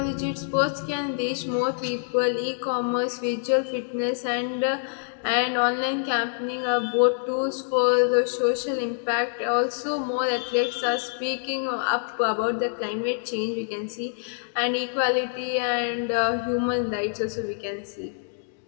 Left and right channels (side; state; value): right; silent; digital silence